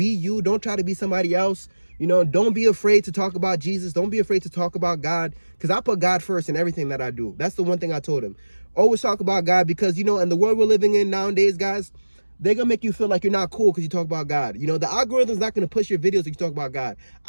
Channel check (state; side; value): inverted; both; correlation -1.00